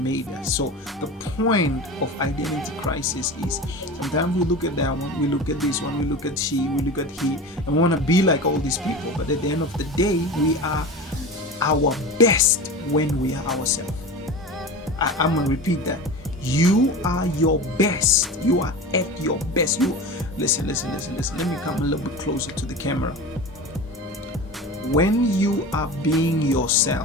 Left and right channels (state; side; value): normal; both; correlation 0.31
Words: us. So the point of identity crisis is, sometimes we look at that one, we look at this one, we look at she, we look at he, and we want to be like all these people. But at the end of the day, we are our best when we are ourselves. I'm going to repeat that. You are your best. You are at your best. Listen. Let me come a little bit closer to the camera. When you are being